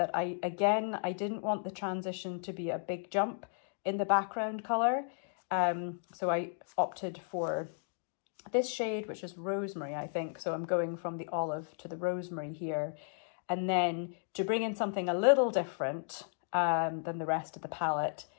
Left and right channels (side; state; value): right; silent; digital silence